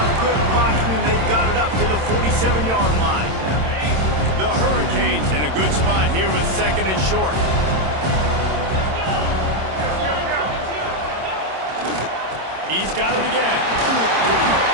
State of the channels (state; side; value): late; left; 26 ms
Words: good blocking, and they've got it up to the 47-yard line. The Hurricanes in a good spot here with 2nd and short. He's got it again.